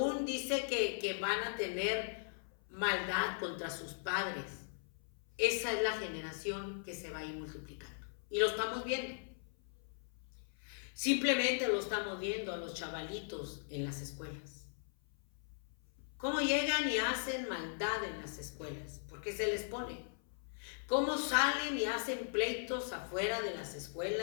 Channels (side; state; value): right; silent; 52 dB below the other